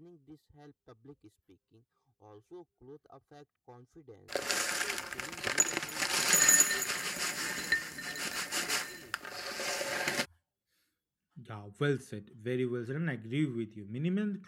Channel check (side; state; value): both; identical; correlation 1.00